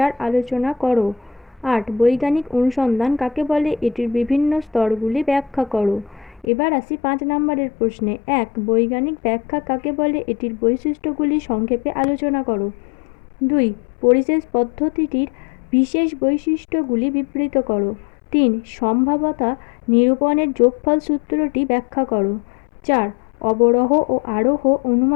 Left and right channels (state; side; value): drops out; right; at 6.5 s